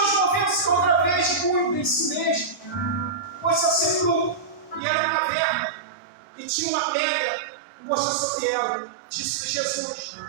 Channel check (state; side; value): drops out; left; at 4.8 s